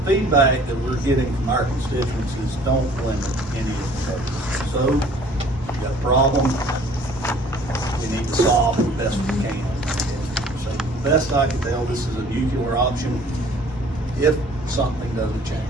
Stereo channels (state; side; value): normal; both; correlation 0.53